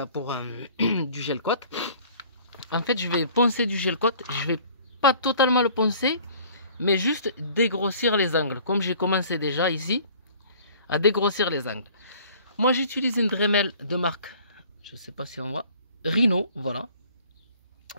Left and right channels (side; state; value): both; inverted; correlation -0.52